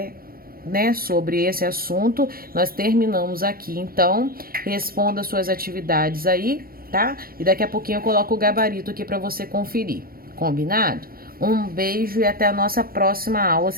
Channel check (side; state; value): left; late; 0.43 ms